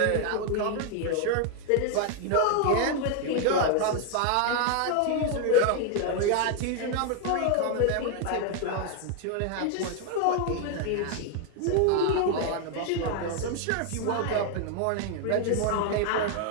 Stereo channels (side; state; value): both; different; correlation 0.00